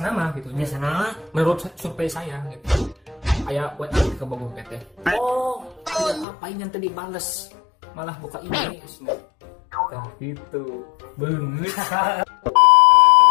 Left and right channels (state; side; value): drops out; right; at 6.2 s